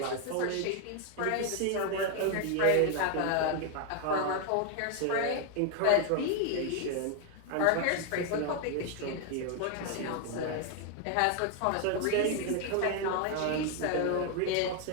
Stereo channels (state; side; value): different; both; correlation 0.00